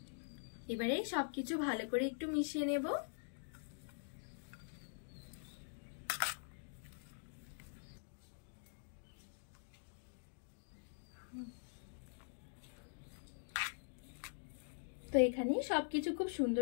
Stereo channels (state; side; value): silent; right; digital silence